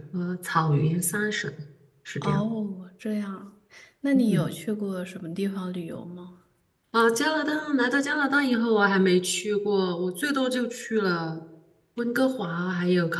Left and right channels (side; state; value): both; identical; correlation 1.00